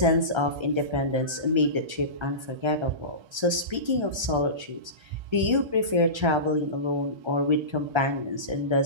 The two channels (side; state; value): left; late; 1.3 ms